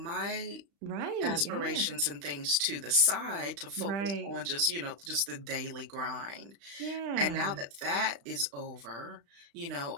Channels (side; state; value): left; late; 35 ms